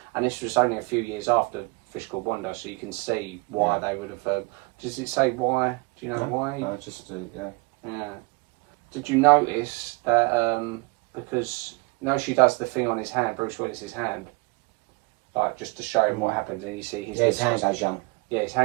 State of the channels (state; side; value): quieter; left; 28.0 dB